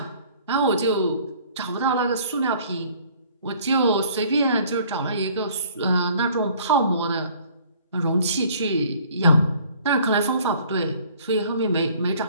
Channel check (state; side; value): inverted; both; correlation -0.55